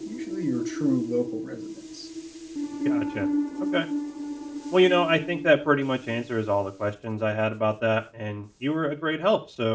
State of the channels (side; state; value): both; identical; correlation 1.00